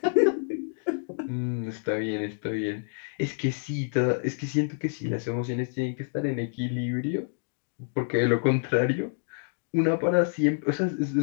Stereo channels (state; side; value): silent; right; digital silence